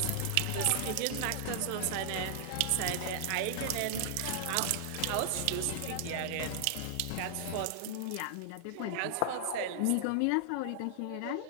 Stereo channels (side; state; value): both; different; correlation -0.01